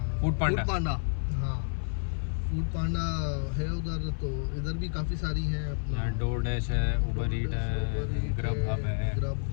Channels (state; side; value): silent; right; 57 dB below the other